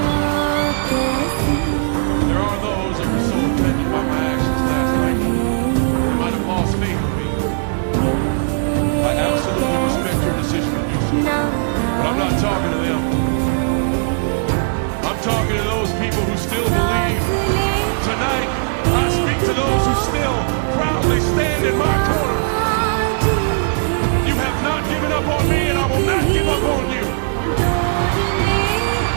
There are those that were so offended by my actions last night, they might have lost faith in me. I absolutely respect your decision to do so, but I'm not talking to them. I'm talking to those people who still believe. Tonight, I speak to those who still proudly stand in my corner. You have not given up on me, and I will not give up on you.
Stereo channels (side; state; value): left; silent; 58 dB below the other